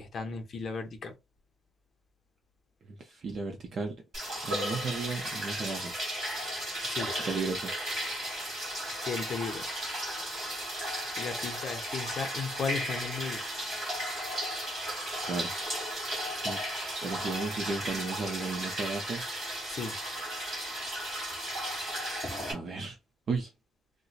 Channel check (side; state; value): both; normal; correlation 0.71